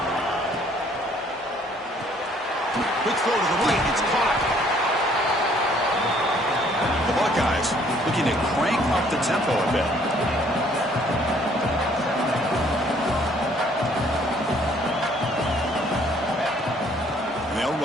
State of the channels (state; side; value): normal; both; correlation 0.61